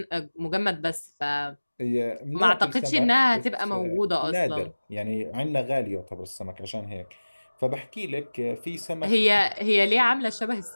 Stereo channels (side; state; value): both; inverted; correlation -1.00